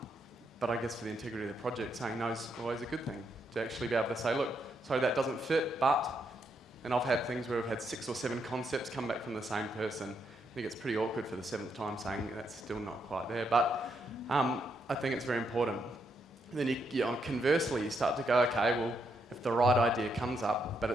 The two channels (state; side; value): normal; both; correlation 0.78